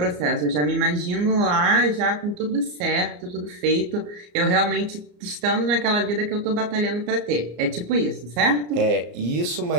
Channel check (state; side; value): late; left; 34 ms